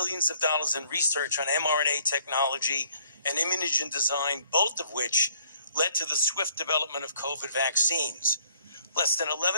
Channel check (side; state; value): both; inverted; correlation -0.62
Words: of dollars in research on mRNA technology and immunogen design, both of which led to the swift development of COVID vaccines. Less than